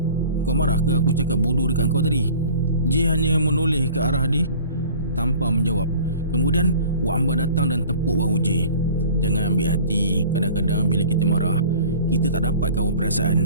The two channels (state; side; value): inverted; both; correlation -0.45